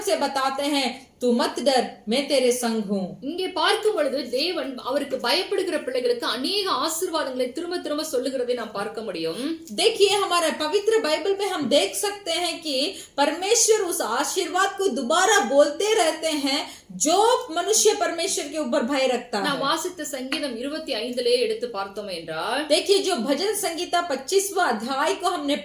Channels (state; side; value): identical; both; correlation 1.00